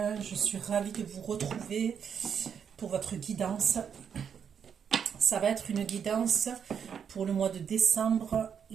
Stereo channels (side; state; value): left; quieter; 7.5 dB